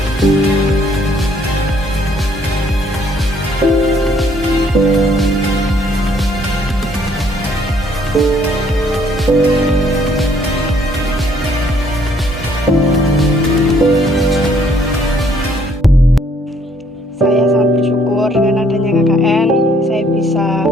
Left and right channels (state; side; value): normal; both; correlation 0.65